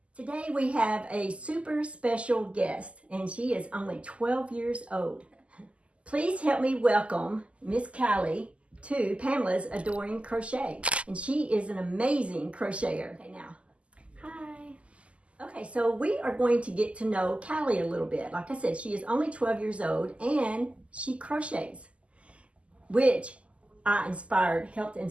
Today we have a super special guest and she is only 12 years old. Please help me welcome Miss Kallie to Pamela's Adoring Crochet. And she is an amazing crocheter. Okay, now. Hi. Okay, so we are going to get to know Kallie a little bit. Like I said, she is only 12 years old and she crochets, which I helped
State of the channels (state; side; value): late; left; 0.059 ms